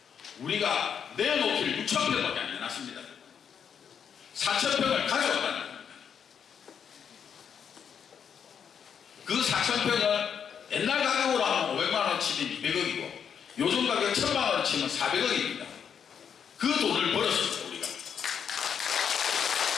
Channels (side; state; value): right; quieter; 7.6 dB